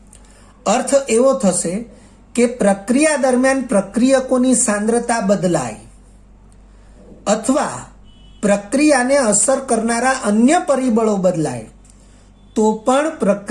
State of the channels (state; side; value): identical; both; correlation 1.00